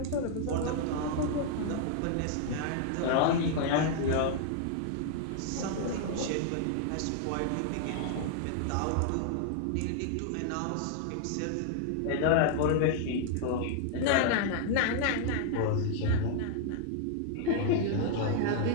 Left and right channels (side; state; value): both; different; correlation 0.00